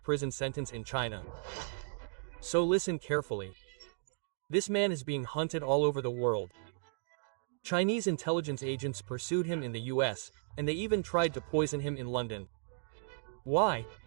sentence in China. So listen carefully. This man is being hunted all over the world. Chinese intelligence agents pursued him in the US, and they even tried to poison him in London. Why?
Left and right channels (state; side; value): silent; left; digital silence